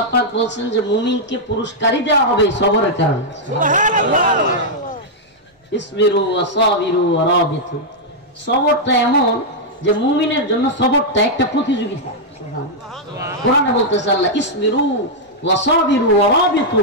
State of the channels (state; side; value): normal; both; correlation -0.05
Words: পাক বলেন যে মুমিনকে পুরস্কারই দেওয়া হবে সবরের কারণে। সুবহানাল্লাহ। ইসবিরু ওয়া সাবিরু ওয়া রাবিতু, সবরটা এমন যে মুমিনের জন্য সবরটা একটা প্রতিযোগিতা। সুবহানাল্লাহ। কোরআনে বলতেছে আল্লাহ ইসবিরু ওয়া সাবিরু ওয়া রাবিতু।